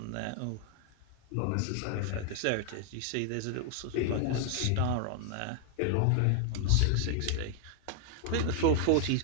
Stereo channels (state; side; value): different; both; correlation 0.00